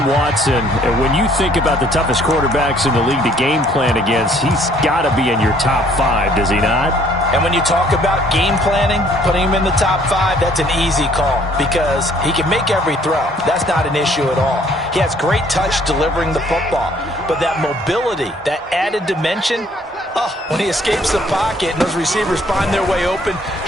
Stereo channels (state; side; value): normal; both; correlation 0.61